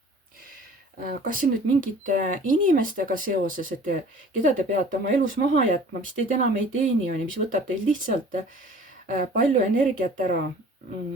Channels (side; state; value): both; normal; correlation 0.48